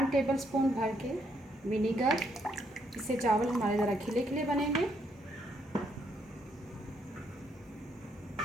टेबलस्पून भर के विनीगर, इससे चावल हमारे ज़रा खिले खिले बनेंगे।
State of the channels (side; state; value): both; normal; correlation 0.73